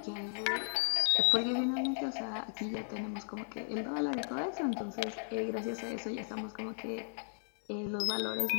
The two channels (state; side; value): silent; right; digital silence